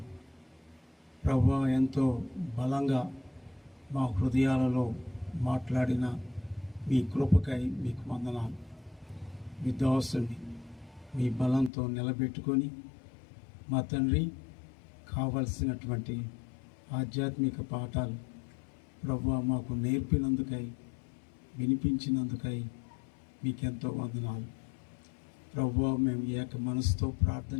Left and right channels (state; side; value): drops out; right; at 11.7 s